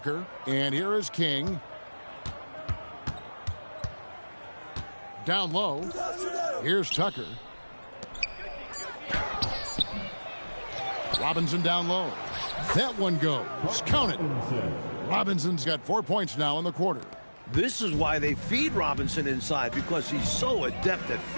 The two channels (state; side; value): inverted; both; correlation -1.00